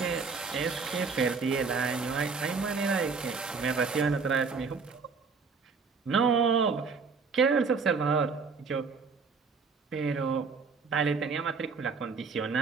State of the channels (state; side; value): quieter; left; 4.9 dB